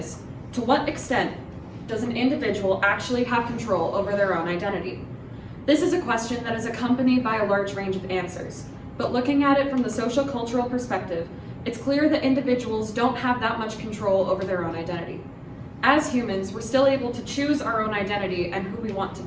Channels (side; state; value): both; identical; correlation 1.00